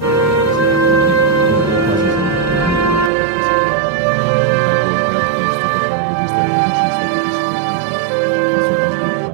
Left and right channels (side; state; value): left; drops out; at 3.1 s